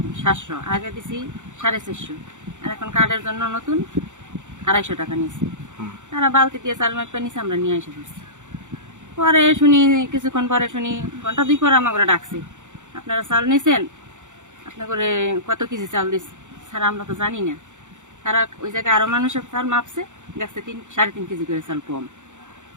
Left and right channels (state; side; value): late; left; 0.85 ms